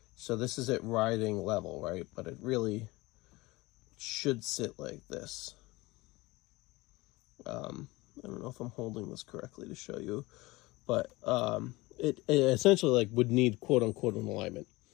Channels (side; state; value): right; quieter; 21.5 dB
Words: So this is at riding level, right? But it really should sit like this. I don't know if I'm holding this correctly to show you, but it essentially like would need quote unquote an alignment.